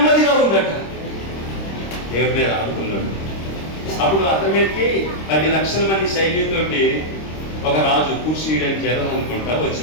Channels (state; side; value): late; right; 26 ms